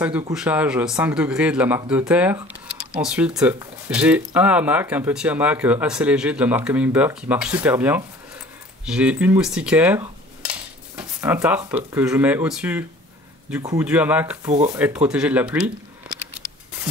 de couchage 5 degrés de la marque De Terre. Ensuite j'ai un hamac, un petit hamac assez léger de la marque Humminbird qui marche super bien. J'ai une moustiquaire, un tarp que je mets au-dessus du hamac pour être protégé de la pluie.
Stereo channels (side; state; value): both; normal; correlation 0.48